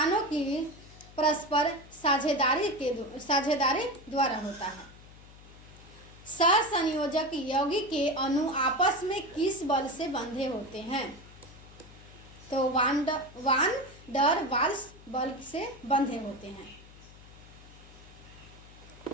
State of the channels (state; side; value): noise; left; hum, 20 dB below the sound